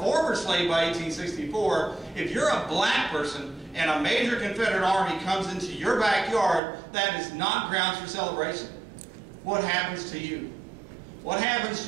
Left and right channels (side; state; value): left; drops out; at 6.6 s